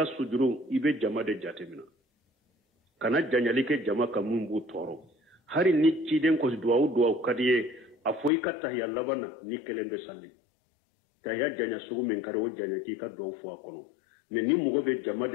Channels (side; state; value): right; drops out; at 8.3 s